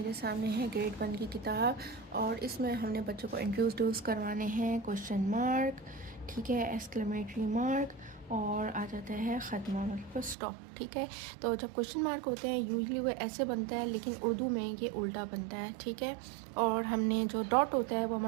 सामने है ग्रेड 1 की किताब और इसमें हमने बच्चों को इंट्रोड्यूस करवाने हैं क्वेश्चन मार्क, ठीक है, एक्सक्लेमेटरी मार्क और आ जाता है ख़त्मा मतलब स्टॉप। ठीक है, तो जब क्वेश्चन मार्क होते हैं यूजली वो ऐसे बनता है, लेकिन उर्दू में ये उल्टा बनता है। ठीक है, और हमने जो डॉट होता है वो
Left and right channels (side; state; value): left; drops out; at 10.4 s